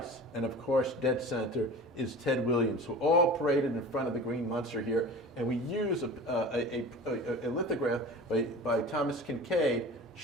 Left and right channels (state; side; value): normal; both; correlation 0.37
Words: and of course, dead center is Ted Williams, who all paraded in front of the Green Monster here. And we use a lithograph by Thomas Kincaid